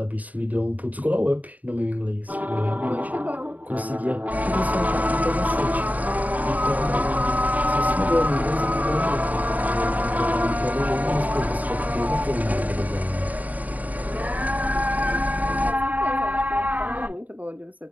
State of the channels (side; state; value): left; late; 0.075 ms